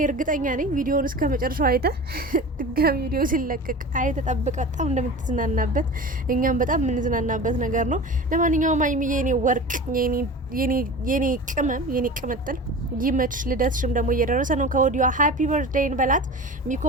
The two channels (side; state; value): both; normal; correlation 0.34